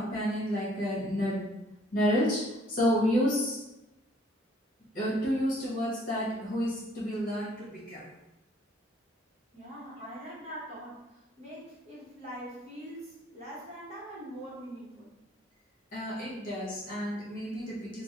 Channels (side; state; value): both; normal; correlation 0.61